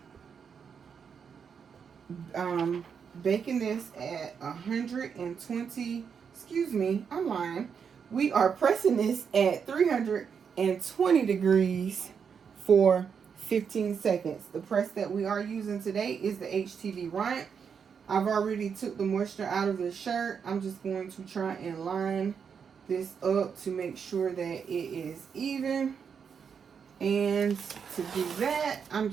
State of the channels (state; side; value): quieter; left; 6.7 dB